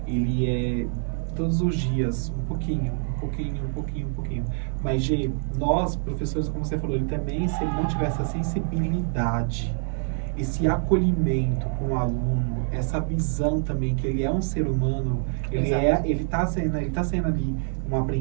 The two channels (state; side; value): silent; left; 61 dB below the other